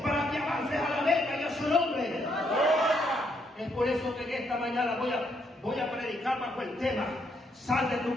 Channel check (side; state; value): both; normal; correlation 0.74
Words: para que avances a la meta y a su nombre. Es por eso que en esta mañana voy a predicar bajo el tema: sal de tu